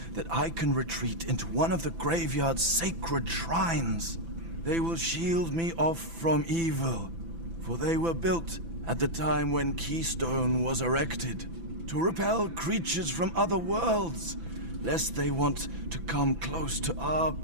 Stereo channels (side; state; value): left; late; 6.0 ms